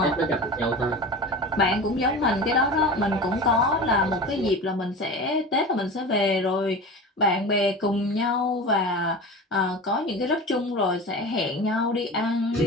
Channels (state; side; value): normal; both; correlation 0.32